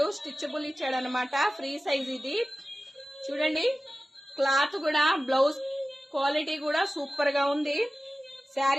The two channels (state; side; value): normal; both; correlation 0.96